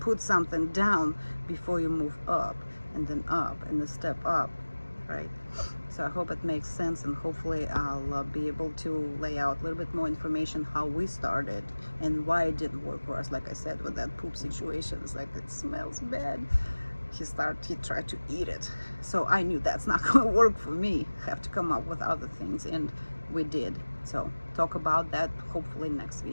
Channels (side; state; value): both; inverted; correlation -1.00